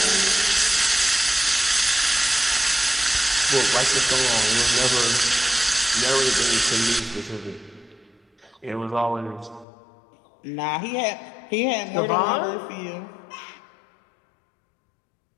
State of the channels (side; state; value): right; drops out; at 9.7 s